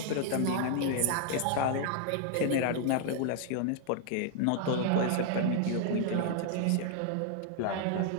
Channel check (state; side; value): different; both; correlation 0.00